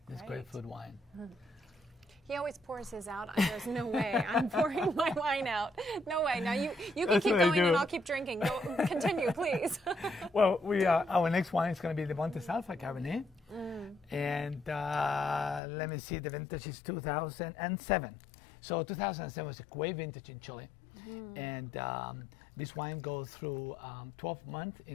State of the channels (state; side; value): drops out; right; at 15.6 s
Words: It's great food wine. He always pours his out. There's no way I'm pouring my wine out. No way. Now you can keep going and I'll keep drinking. Continue, please. Well, our next wine is going to be the Montes Alpha Cabernet. And let me see, the vintage is 2007. So 2007 was a great vintage in Chile. And this wine goes through 12 months